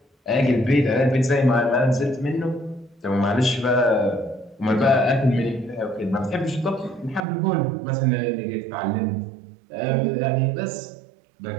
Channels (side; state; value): left; drops out; at 7.2 s